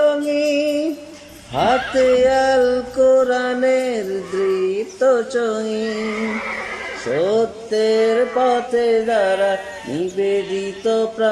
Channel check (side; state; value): both; identical; correlation 1.00